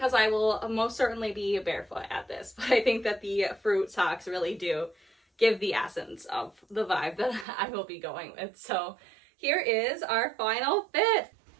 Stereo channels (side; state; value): left; drops out; at 7.5 s